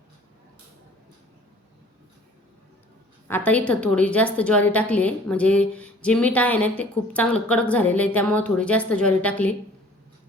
आता इथं थोडी जास्त ज्वारी टाकली आहे म्हणजे जे मीठ आहे ना ते खूप चांगलं कडक झालेलं आहे त्यामुळे थोडी जास्त ज्वारी टाकली.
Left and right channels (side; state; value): both; normal; correlation 0.51